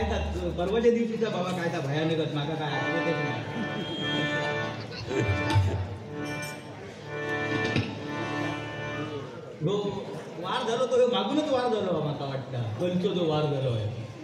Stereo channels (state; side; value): identical; both; correlation 1.00